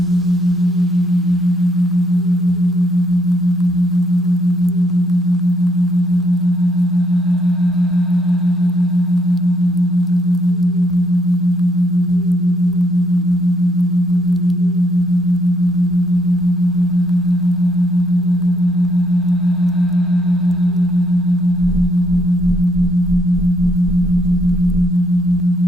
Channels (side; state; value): both; normal; correlation 0.71